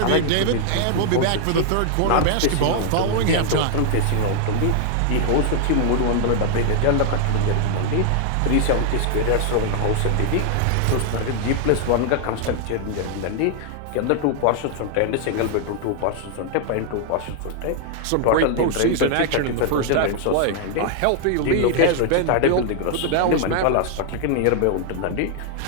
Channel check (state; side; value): different; both; correlation 0.00